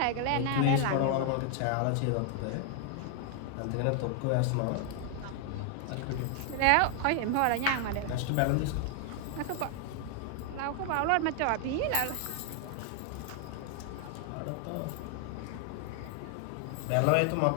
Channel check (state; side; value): different; both; correlation 0.00